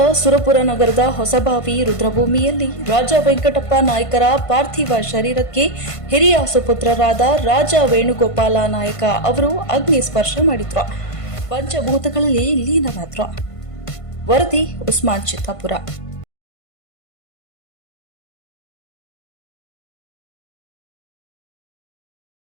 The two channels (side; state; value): right; late; 1.5 ms